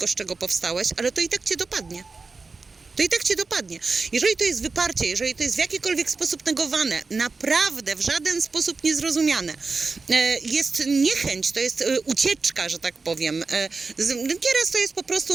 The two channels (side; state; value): left; quieter; 4.2 dB